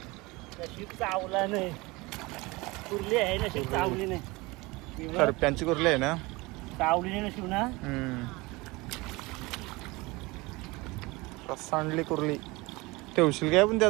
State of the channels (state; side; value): quieter; left; 23.2 dB